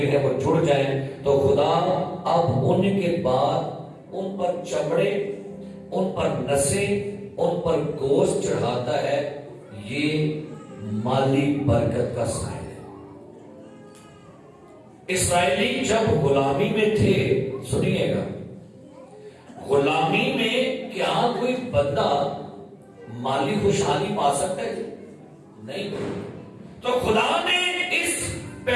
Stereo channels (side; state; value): both; identical; correlation 1.00